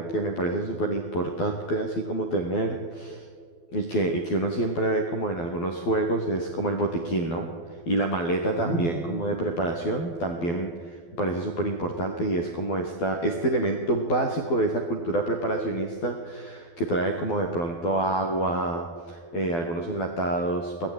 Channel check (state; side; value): late; right; 12 ms